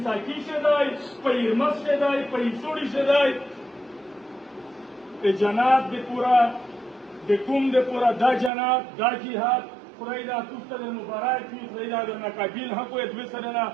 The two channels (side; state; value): left; drops out; at 8.5 s